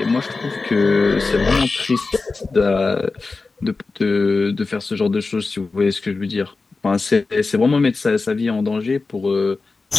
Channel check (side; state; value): right; quieter; 3.9 dB